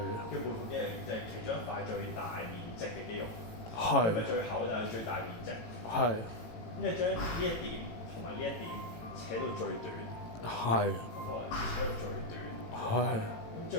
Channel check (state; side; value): late; right; 18 ms